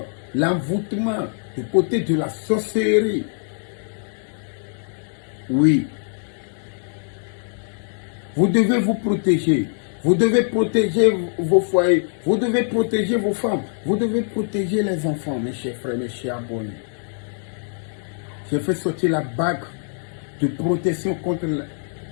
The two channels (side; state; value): right; silent; digital silence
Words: l'envoûtement du côté de la sorcellerie. Oui. Vous devez vous protéger. Vous devez protéger vos foyers. Vous devez protéger vos femmes. Vous devez protéger les enfants, mes chers frères, mes chers abonnés. J'ai fait sortir la bague de protection contre